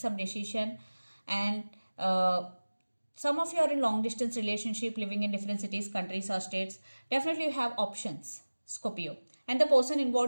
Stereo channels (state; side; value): inverted; both; correlation -1.00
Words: decision. And some of you are in long distance relationship, living in different cities, countries or states. Definitely you have options, Scorpio. And the person